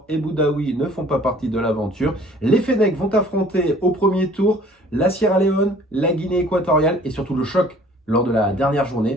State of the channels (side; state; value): both; normal; correlation 0.53